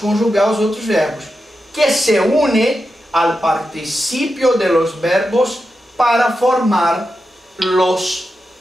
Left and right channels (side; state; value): both; normal; correlation 0.89